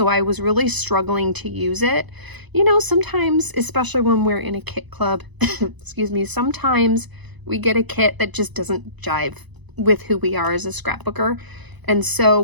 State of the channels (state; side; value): late; left; 1.0 ms